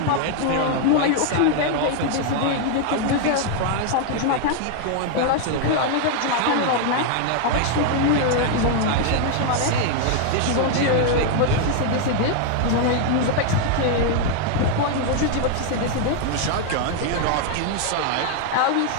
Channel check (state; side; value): different; both; correlation 0.00